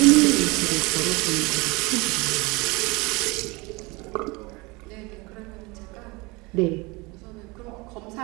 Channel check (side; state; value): left; quieter; 25.2 dB